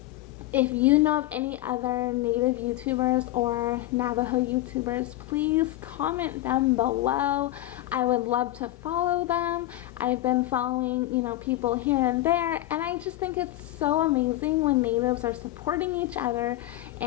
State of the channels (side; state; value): right; quieter; 15.6 dB